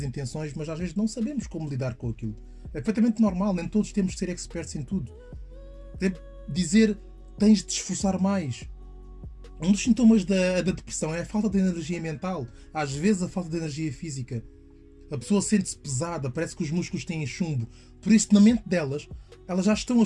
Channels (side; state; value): both; identical; correlation 1.00